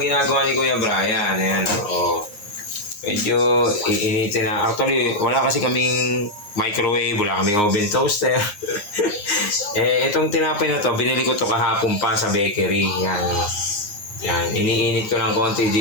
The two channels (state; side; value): late; right; 9.7 ms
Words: ni Kuya Brian. Ayan, medyo iinitin na. Actually, wala kasi kaming microwave, wala kaming oven toaster. Itong tinapay na to, binili ko to kahapon pa sa bakery. Yan, iniinit ko ng konti